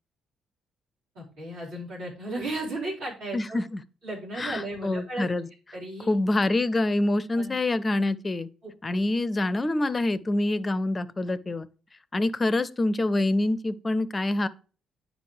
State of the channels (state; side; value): normal; both; correlation 0.95